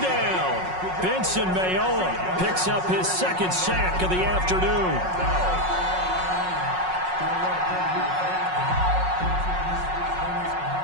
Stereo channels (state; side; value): late; left; 5.5 ms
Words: Benson Mayowa picks up his 2nd sack of the afternoon.